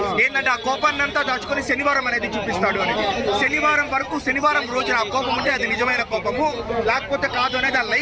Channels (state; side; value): identical; both; correlation 1.00